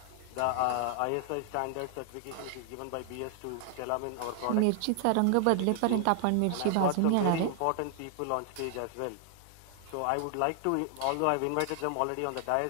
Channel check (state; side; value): different; both; correlation 0.00